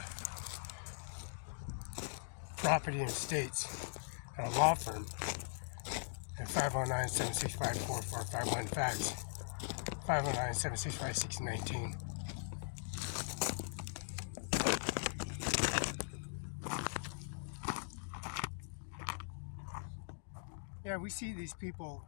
property and estates at a law firm at 509-765-4451 fax 509-765-1619. Yeah, we see these people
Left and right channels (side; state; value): right; silent; digital silence